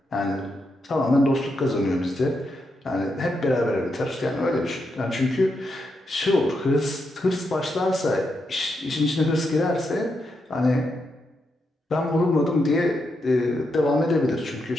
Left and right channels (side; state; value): both; normal; correlation 0.83